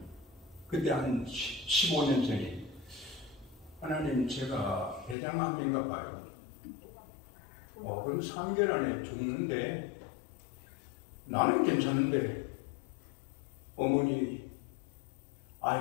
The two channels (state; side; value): drops out; right; at 5.2 s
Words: 그때 한 15년 전에, 하나님 제가 대장암인가 봐요. 그럼 3개월 안에 죽는데 나는 괜찮은데 어머니,